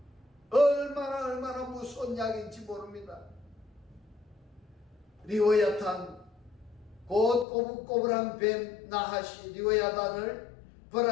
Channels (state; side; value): drops out; right; at 7.5 s